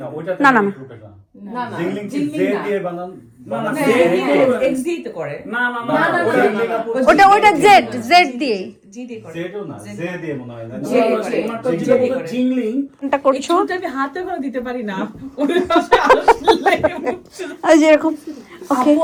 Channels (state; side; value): identical; both; correlation 1.00